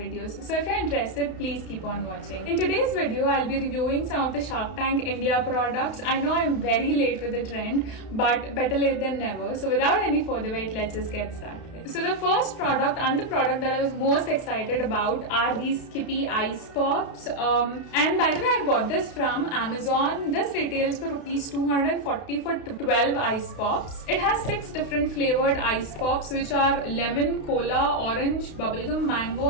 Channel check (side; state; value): right; late; 32 ms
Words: So if you're interested, please keep on watching. In today's video, I'll be reviewing some of the Shark Tank India products. I know I'm very late to the trend, but better late than never. So without any further wait, let's just get started. So the first product and the product that I was most excited about are these Skippy Ice Pops. And by the way, I bought this from Amazon. This retails for rupees 240 for 12 ice pops. It has 6 different flavored ice pops, which are lemon, cola, orange, bubblegum, mango